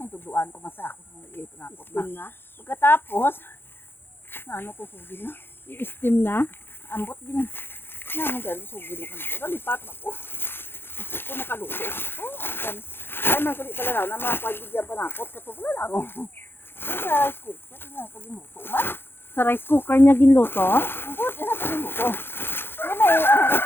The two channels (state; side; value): late; right; 0.10 ms